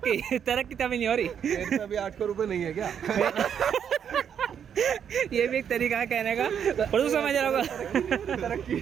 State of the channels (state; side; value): quieter; left; 8.2 dB